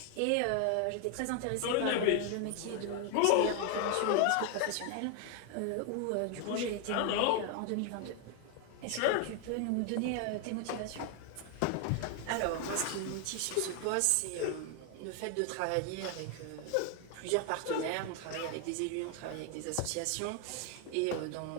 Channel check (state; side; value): different; both; correlation 0.01